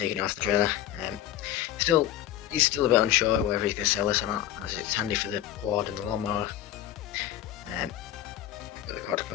it off the trailer. He's still a bit unsure whether he's going to sell this or not, as it's handy for the quad and the lawnmower. But the quad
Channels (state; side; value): quieter; right; 12.4 dB